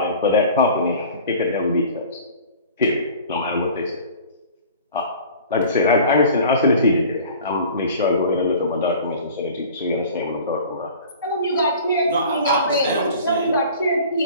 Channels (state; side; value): inverted; both; correlation -0.44